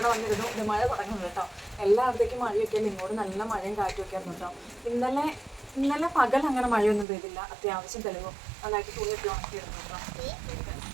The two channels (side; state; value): left; drops out; at 7.1 s